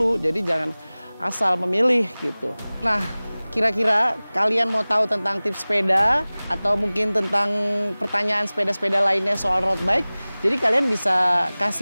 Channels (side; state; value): both; inverted; correlation -0.99